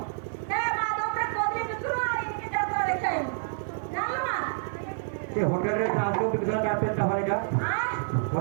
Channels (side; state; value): left; silent; 57 dB below the other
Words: ଏ ମାଧବରେ କୋଦି ବିକ୍ରୁ ଆଇକି ଯାତ୍ରା ଦେଖେଇବୁ ଜାଣିଲ ନା ସେ ହୋଟେଲରେ ଆଲୁଚପ ବିକୁଥିଲା ତା ପେଟଟା ଭରିଟା